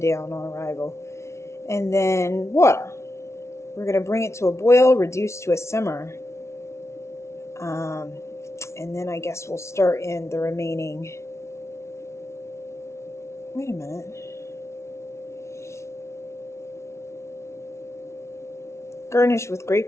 down on arrival. And then water. We're going to bring it to a boil, reduce to a simmer. And then I guess we'll start in the remaining... Wait a minute. Garnish with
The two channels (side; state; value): right; late; 0.13 ms